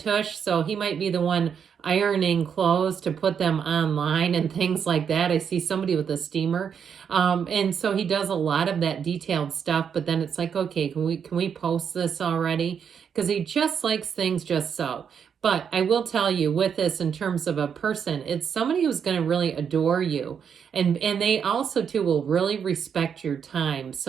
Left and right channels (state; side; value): quieter; left; 7.4 dB